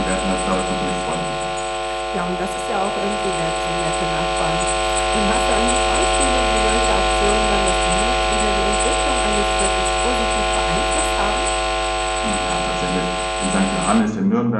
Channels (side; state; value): both; identical; correlation 1.00